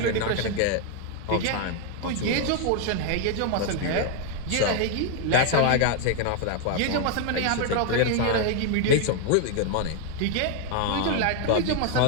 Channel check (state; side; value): different; both; correlation 0.00